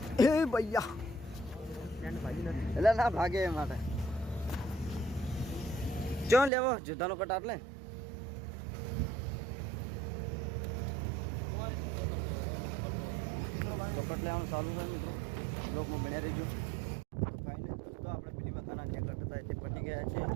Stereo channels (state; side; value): drops out; left; at 6.5 s